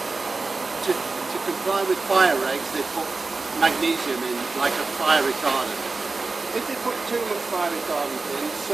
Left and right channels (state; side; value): quieter; left; 3.8 dB